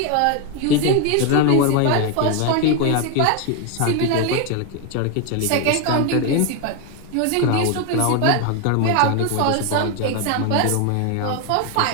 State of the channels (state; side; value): different; both; correlation 0.01